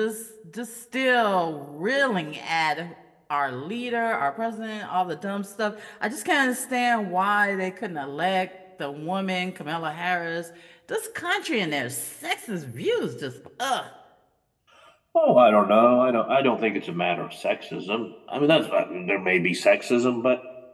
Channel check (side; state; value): both; identical; correlation 1.00